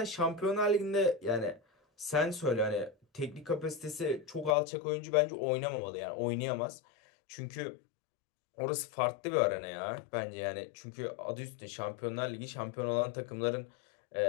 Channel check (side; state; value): right; drops out; at 4.5 s